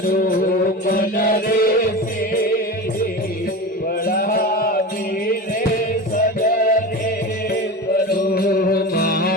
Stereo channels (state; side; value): normal; both; correlation 0.27